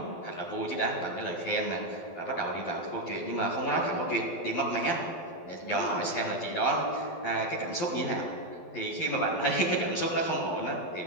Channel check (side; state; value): right; late; 12 ms